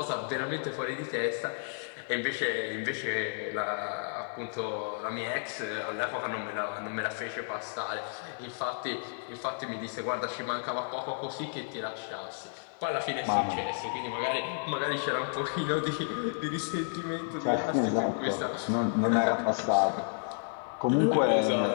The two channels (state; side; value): silent; right; 57 dB below the other